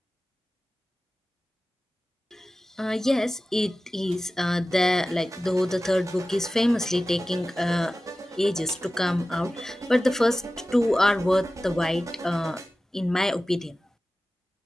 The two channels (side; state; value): both; normal; correlation 0.96